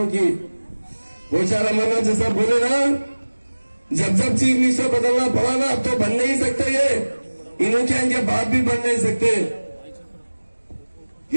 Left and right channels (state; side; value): inverted; both; correlation -1.00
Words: की? बेचारा मना जैसा बोले ना, जब जब चीफ मिनिस्टर बदलना पड़ा ना, अब तो बन नहीं सकते, ये इन्हों के इनके बाप भी बन नहीं सकते।